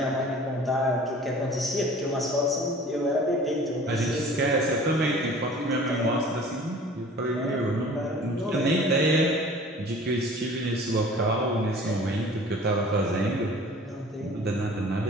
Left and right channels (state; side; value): normal; both; correlation 0.46